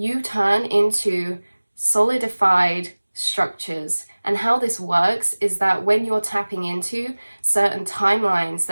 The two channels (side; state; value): both; inverted; correlation -1.00